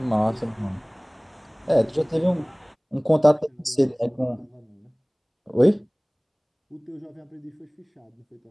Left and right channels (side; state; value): both; identical; correlation 1.00